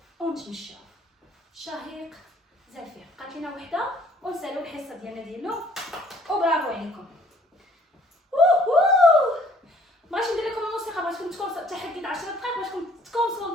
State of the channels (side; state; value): both; normal; correlation 0.59